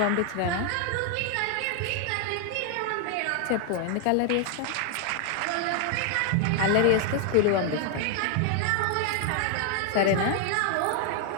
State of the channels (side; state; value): both; different; correlation 0.00